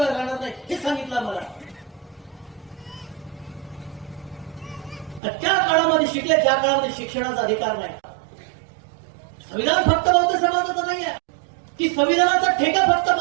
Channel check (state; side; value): drops out; left; at 5.2 s